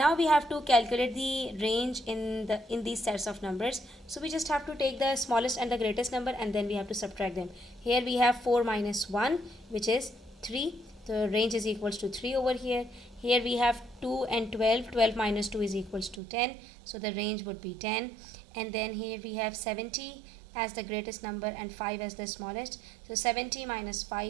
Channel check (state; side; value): drops out; left; at 16.2 s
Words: we have to calculate the range in these sets of numbers. So we just have to take the smallest and the greatest number, and then we have to subtract them. Here we have 4 minus 1, which is 3. The range is equals to 3 over here. Here we have 2 and 12. 12 minus 2 is equals to 10. So the range would be 10. And then here we have 70 as the greatest number and 5 as the smallest. So 70 minus